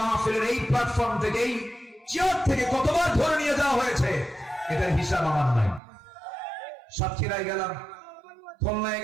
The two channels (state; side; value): drops out; left; at 5.8 s